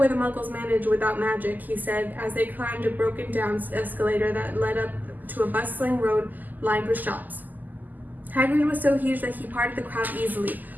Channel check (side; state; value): left; late; 0.084 ms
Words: the Muggles manage without magic, he said as they climbed a broken-down escalator that led up to a bustling road lined with shops. Hagrid was so huge that he parted the crowd easily.